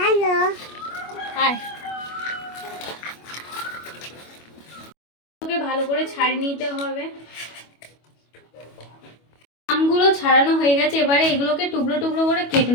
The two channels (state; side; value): late; right; 25 ms